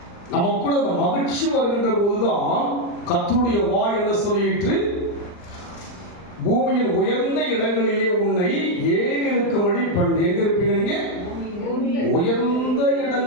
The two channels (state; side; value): late; right; 39 ms